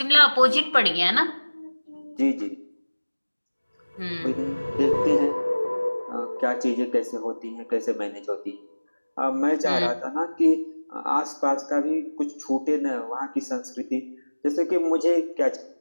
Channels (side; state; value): both; inverted; correlation -1.00